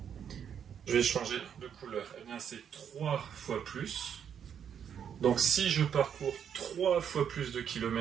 je vais changer de couleur, eh bien c'est 3 fois plus. Donc si je parcours 3 fois plus de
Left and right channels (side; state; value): left; quieter; 8.3 dB